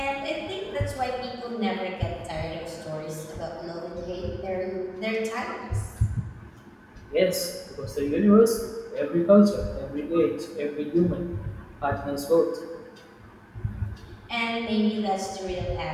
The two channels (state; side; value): identical; both; correlation 1.00